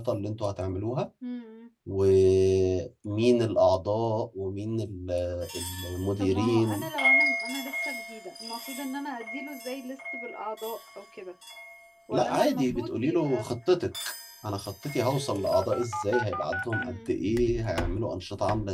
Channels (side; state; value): both; identical; correlation 1.00